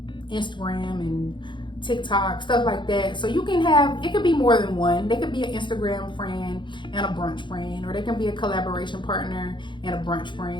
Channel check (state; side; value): late; right; 0.23 ms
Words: and TikTok, stuff like that. So you can have, it could be more than one. They could be an Instagram friend and a brunch friend, or they can be a collaboration partner and a brunch